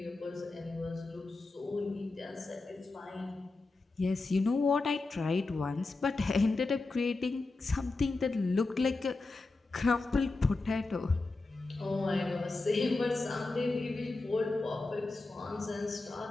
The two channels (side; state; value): right; quieter; 3.5 dB